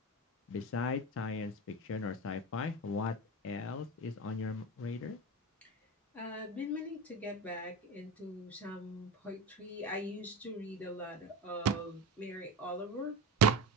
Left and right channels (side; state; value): both; normal; correlation 0.25